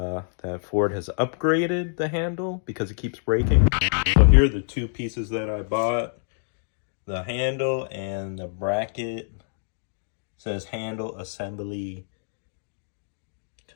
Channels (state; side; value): silent; right; digital silence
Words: Ford has upgraded the handle because it keeps breaking. So here are the two pieces that I bought: the handle and the bracket. It says handle assembly